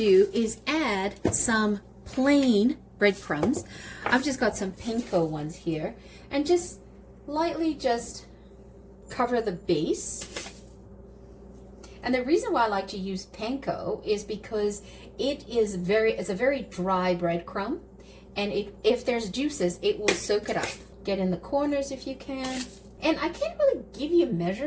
is add some plain breadcrumbs. I've just got some panko ones here, and just lightly just cover the base. And the reason why I like to use panko is because it's a very dry breadcrumb, and if there's juices, it will soak it up. Get in the corners if you can. And I can't really give you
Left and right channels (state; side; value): identical; both; correlation 1.00